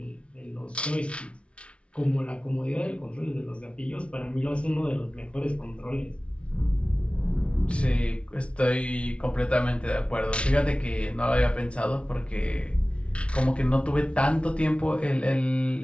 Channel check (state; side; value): late; right; 0.060 ms